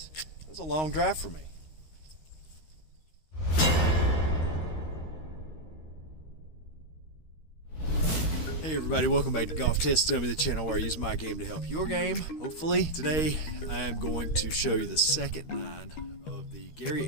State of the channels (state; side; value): late; right; 13 ms